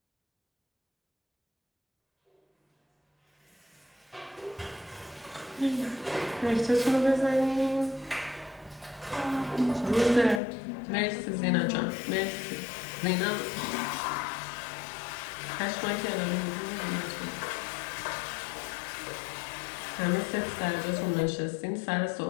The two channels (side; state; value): right; drops out; at 10.4 s